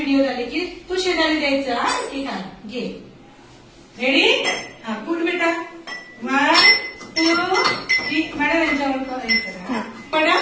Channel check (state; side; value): identical; both; correlation 1.00